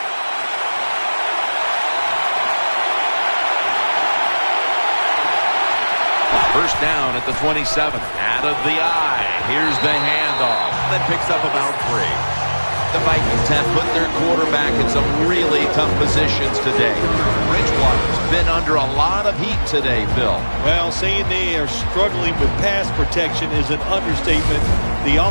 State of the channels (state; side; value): inverted; both; correlation -1.00